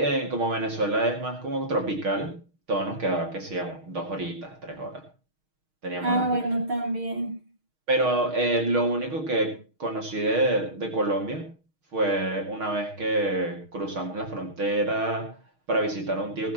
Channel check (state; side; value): late; left; 6.4 ms